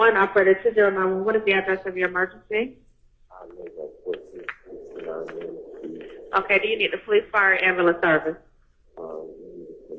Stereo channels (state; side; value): identical; both; correlation 1.00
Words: operator 2091. What is the address of your emergency? Okay, do you need the police, fire, ambulance service?